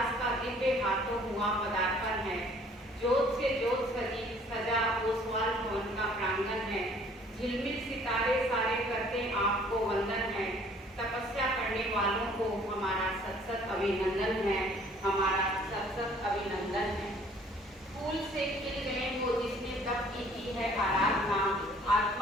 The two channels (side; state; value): both; normal; correlation 0.56